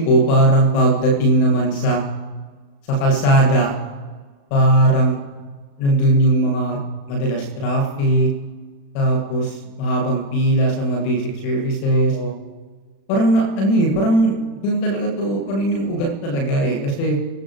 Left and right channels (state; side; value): late; right; 36 ms